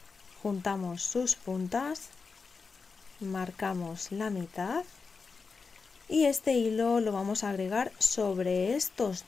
juntamos sus puntas, marcamos la mitad y este hilo lo vamos a agregar sobre estos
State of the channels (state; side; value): quieter; right; 4.8 dB